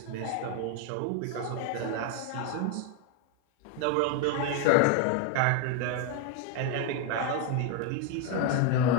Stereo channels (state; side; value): different; both; correlation 0.01